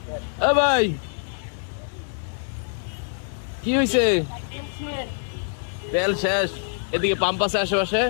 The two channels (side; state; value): right; silent; digital silence